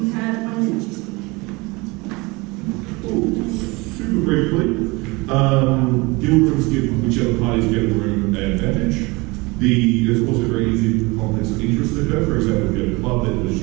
you have 1 minute to speak. super briefly. Guild rooms give whichever parties get the room an advantage. It's also very easy for conflicts of interest to occur. For example, if you have a club that was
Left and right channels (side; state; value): left; quieter; 24.9 dB